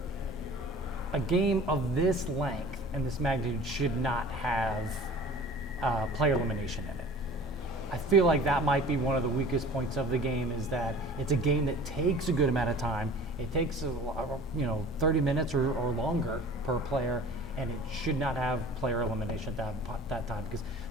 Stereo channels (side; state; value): both; normal; correlation 0.44